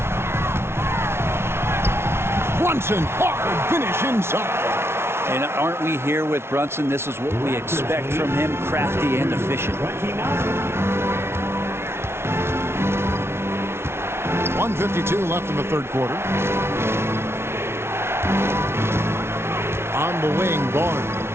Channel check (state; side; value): late; left; 0.12 ms